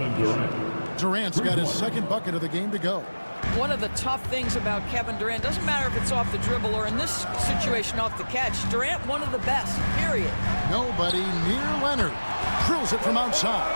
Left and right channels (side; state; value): both; inverted; correlation -1.00